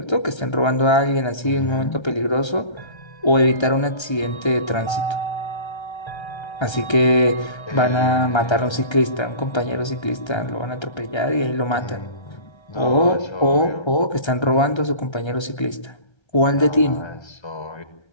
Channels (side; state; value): right; late; 1.3 ms